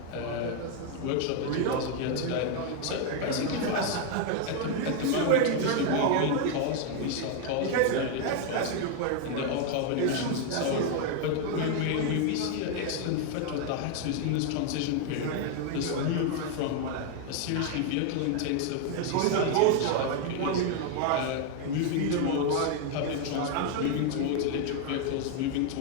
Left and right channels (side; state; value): both; different; correlation 0.00